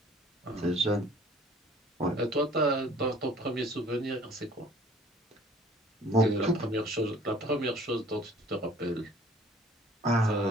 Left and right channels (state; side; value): normal; both; correlation 0.53